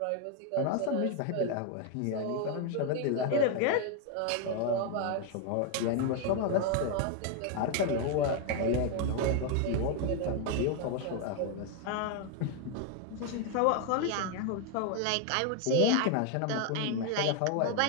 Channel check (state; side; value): different; both; correlation 0.01